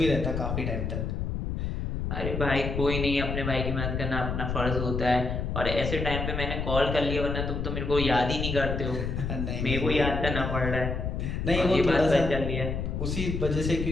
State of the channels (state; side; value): noise; left; rumble, 2 dB below the sound